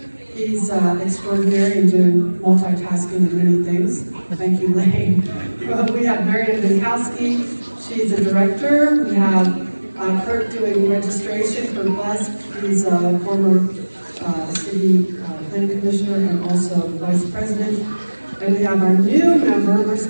He's extraordinary and doing multitasking and many things. Thank you, Lane. We have Marian Minkowski. She's a director. We have Kurt doing registration for BUS. He's a former city planning commissioner and also vice president. And we have our new member, where's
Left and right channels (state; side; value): inverted; both; correlation -1.00